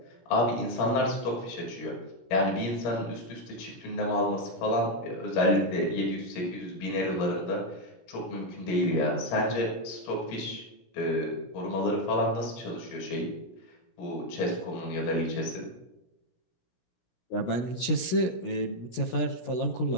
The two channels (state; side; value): late; right; 17 ms